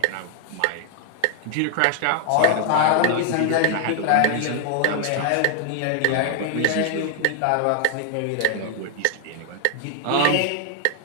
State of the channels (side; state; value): both; different; correlation 0.00